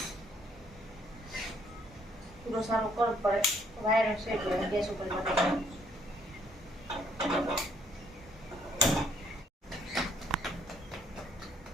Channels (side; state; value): both; normal; correlation 0.66